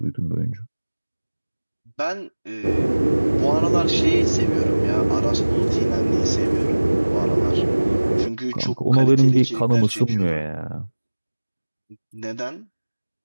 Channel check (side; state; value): both; inverted; correlation -1.00